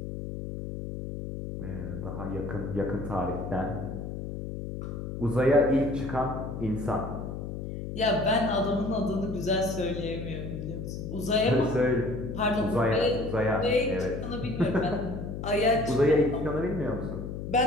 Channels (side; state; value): left; noise; hum, 6 dB below the sound